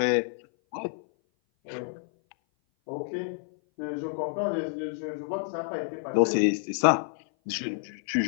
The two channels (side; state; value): right; silent; 56 dB below the other